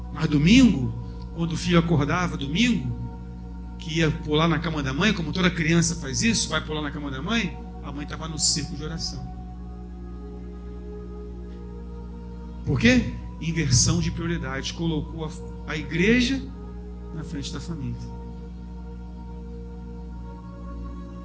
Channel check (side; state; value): both; identical; correlation 1.00